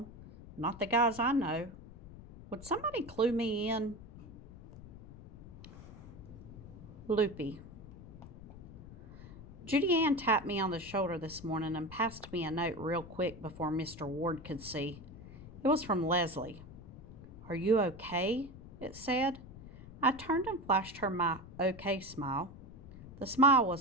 Not the guys I know. Would somebody clue me in? Lupe. Judy Ann tapped me on the shoulder this morning and passed me a note real quick before Mr. Ward could see. It was from Leslie. Are you okay? It said. I turned and flashed her my okay smile. The smile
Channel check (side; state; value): left; noise; rumble, 15 dB below the sound